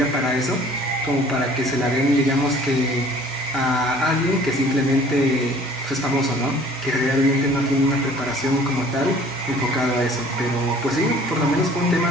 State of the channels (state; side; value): normal; both; correlation 0.52